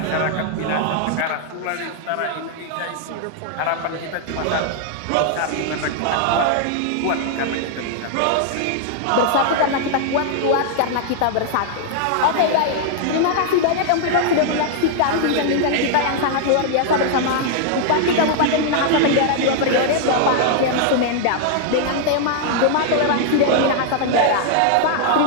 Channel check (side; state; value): both; different; correlation 0.00